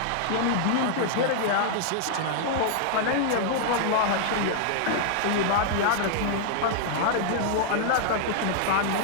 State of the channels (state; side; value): different; both; correlation -0.01